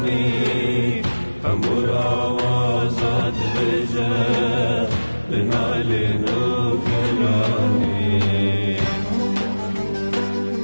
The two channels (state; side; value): inverted; both; correlation -1.00